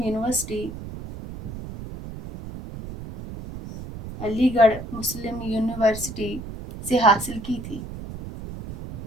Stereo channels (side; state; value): right; noise; rumble, 11 dB below the sound